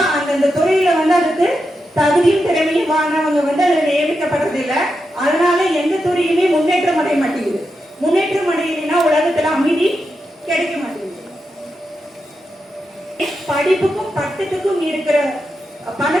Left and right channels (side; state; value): both; normal; correlation 0.87